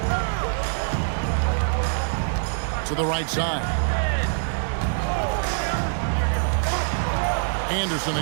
To the right side. Anderson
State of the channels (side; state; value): left; silent; 62 dB below the other